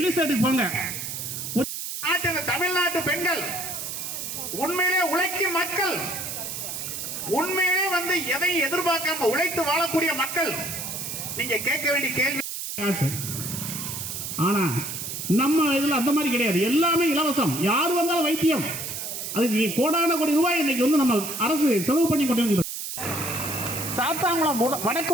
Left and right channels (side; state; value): right; noise; hiss, 6 dB below the sound